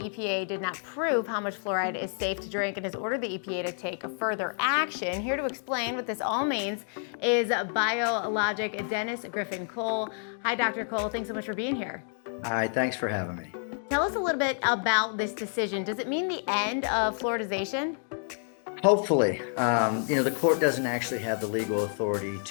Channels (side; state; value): right; silent; 57 dB below the other